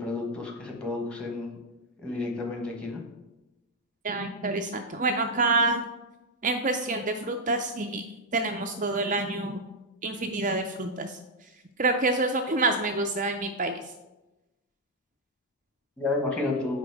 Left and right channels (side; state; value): both; normal; correlation 0.01